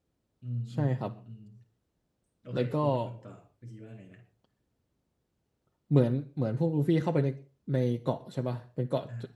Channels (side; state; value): both; identical; correlation 1.00